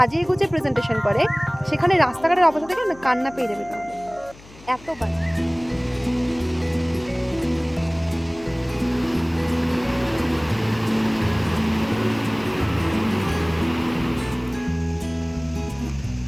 গুছিয়ে প্রেজেন্টেশন করে, সেখানে রাস্তাঘাটের অবস্থা দেখে না কান্না পেয়ে যাবে তোমাদের, এত বাজে।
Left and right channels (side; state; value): left; noise; hum, 21 dB below the sound